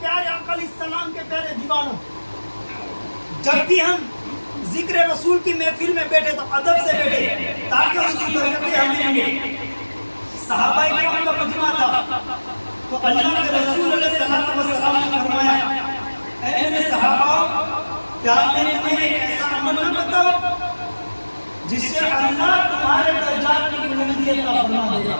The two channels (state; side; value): inverted; both; correlation -1.00